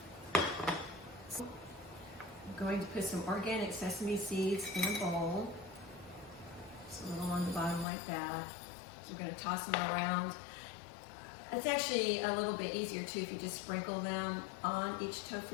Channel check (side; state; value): right; drops out; at 7.9 s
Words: So I'm going to put some organic sesame seeds in a bowl. Just a little on the bottom like that. So we're going to toss them around. It's actually a little bit easier too if you just sprinkle them on each